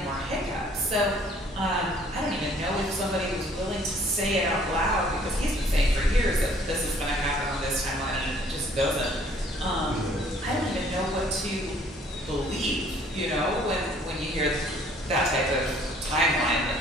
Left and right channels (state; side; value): normal; both; correlation 0.58